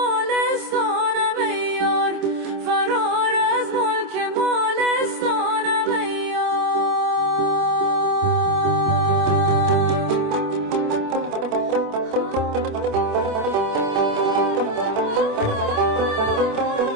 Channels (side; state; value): left; late; 26 ms